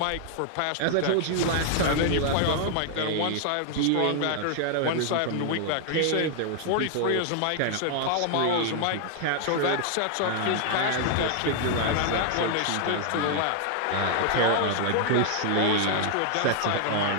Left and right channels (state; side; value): different; both; correlation 0.00